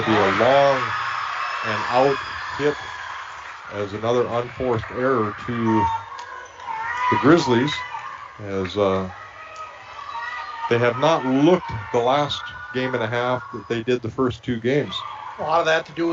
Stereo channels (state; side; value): identical; both; correlation 1.00